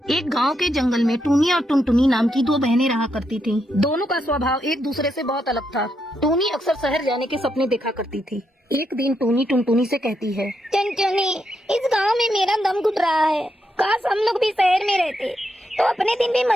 एक गांव के जंगल में टूनी और टुनटुनी नाम की दो बहनें रहा करती थीं। दोनों का स्वभाव एक दूसरे से बहुत अलग था। टूनी अक्सर शहर जाने के सपने देखा करती थी। एक दिन टूनी टुनटुनी से कहती है, टुनटुनी, इस गांव में मेरा दम घुट रहा है। काश हम लोग भी शहर में रहते तो अपने दिन भी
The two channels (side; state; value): both; normal; correlation 0.81